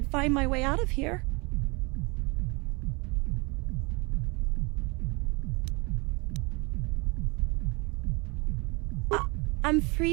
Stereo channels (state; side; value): quieter; left; 28.6 dB